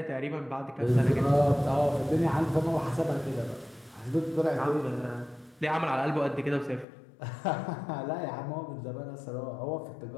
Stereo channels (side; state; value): right; drops out; at 6.9 s